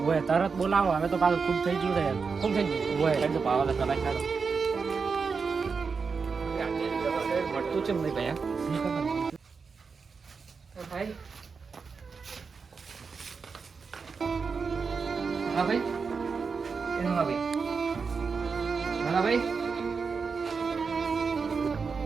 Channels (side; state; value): left; quieter; 5.2 dB